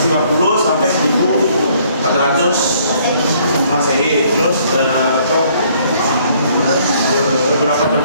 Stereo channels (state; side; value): inverted; both; correlation -0.63